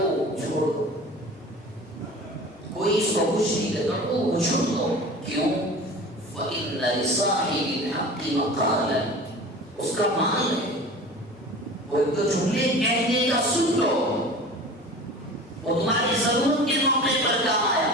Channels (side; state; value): both; normal; correlation 0.38